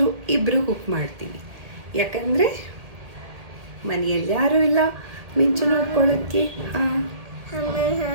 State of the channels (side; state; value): left; late; 2.0 ms